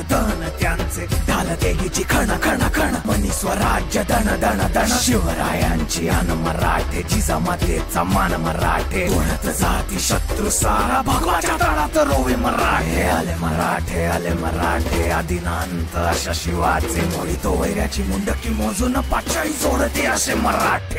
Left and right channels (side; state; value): both; identical; correlation 1.00